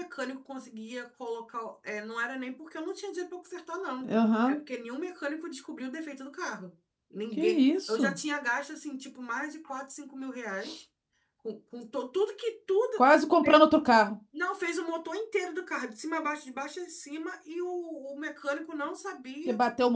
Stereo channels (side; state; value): both; identical; correlation 1.00